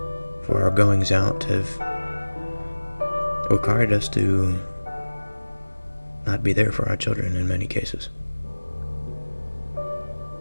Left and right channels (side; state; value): both; inverted; correlation -1.00